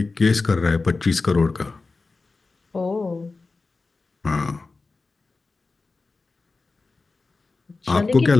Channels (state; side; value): quieter; right; 3.8 dB